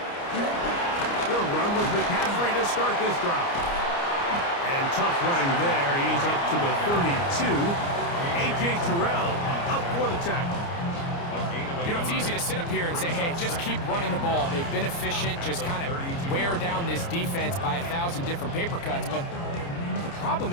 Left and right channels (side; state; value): right; late; 29 ms